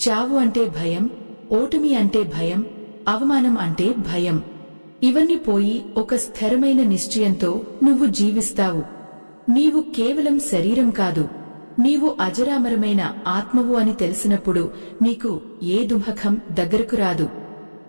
అంటే భయం, ఓటమి అంటే భయం, అవమానం అంటే భయం. ఇవన్నీ పోయి ఒక స్థిరమైన నిశ్చయంతో నువ్వు జీవిస్తావు. నీవు కేవలం శరీరం కాదు, నీవు అజరామరమైన ఆత్మవు అని తెలిసినప్పుడు నీకు ఏ దుఃఖం దగ్గరకు రాదు.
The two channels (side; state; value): both; inverted; correlation -1.00